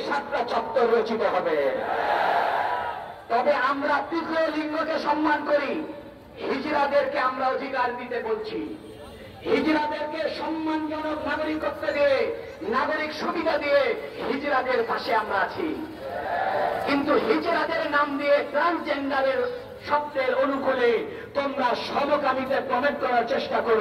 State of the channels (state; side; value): identical; both; correlation 1.00